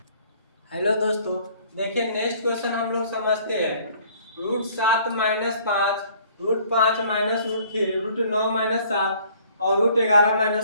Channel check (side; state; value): both; inverted; correlation -0.57